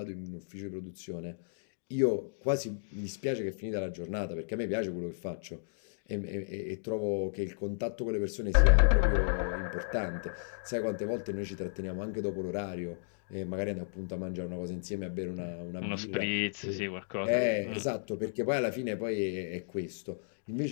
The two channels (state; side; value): silent; right; digital silence